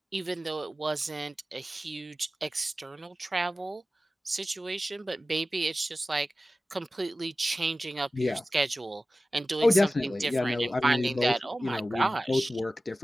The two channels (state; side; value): normal; both; correlation 0.95